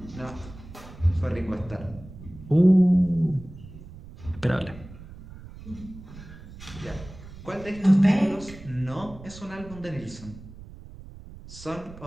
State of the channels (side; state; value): right; noise; rumble, 16 dB below the sound